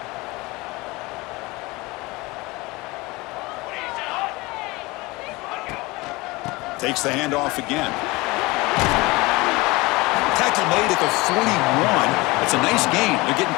Takes the handoff again. Tackle made at the 41. That's a nice gain. They're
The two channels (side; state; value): right; quieter; 22.9 dB